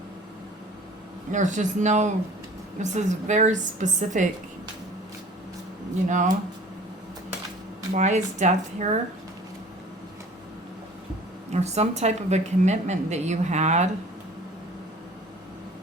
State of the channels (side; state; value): both; normal; correlation 0.48